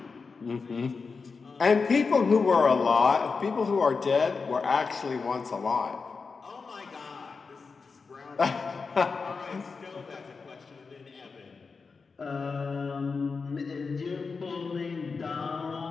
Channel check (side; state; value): right; quieter; 4.8 dB